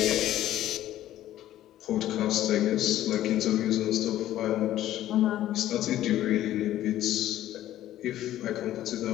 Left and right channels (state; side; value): quieter; right; 13.2 dB